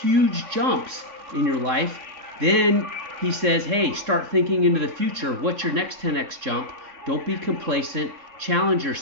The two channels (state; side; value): late; left; 3.6 ms